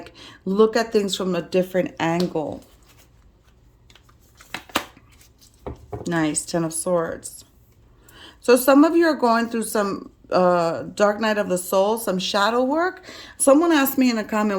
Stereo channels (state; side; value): identical; both; correlation 1.00